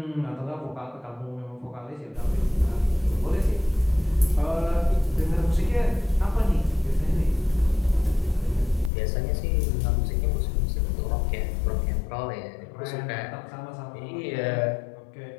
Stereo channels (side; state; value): right; drops out; at 8.9 s